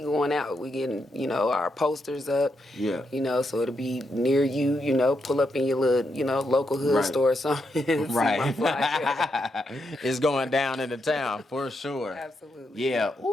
out. We getting our posters up. Yeah. So it'll be near you. Pull up in your little local hood store or something. Right. See my flyer. It's going down in the town for sure. Absolutely. Yeah.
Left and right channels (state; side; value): normal; both; correlation 0.82